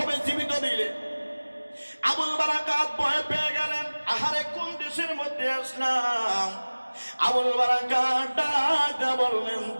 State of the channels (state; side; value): inverted; both; correlation -1.00